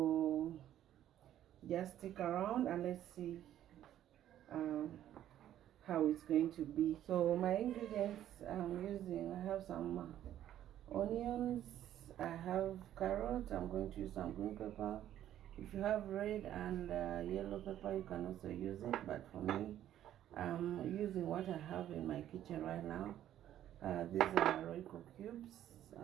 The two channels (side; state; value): left; quieter; 11.7 dB